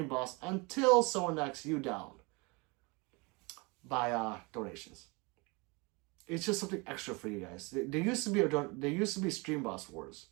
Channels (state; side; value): quieter; left; 27.8 dB